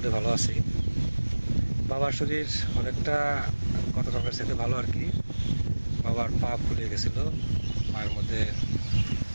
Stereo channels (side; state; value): both; inverted; correlation -1.00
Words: ভালো আছি। বাবার শরীর অনেকটা গত কালকের সাথে ভালো আর কি। বাবার পা ফুলে গেছিল, পায়ের মধ্যে